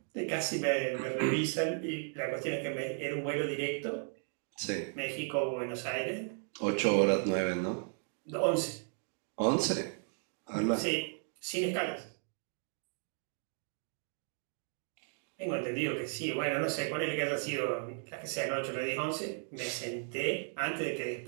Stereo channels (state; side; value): silent; left; 54 dB below the other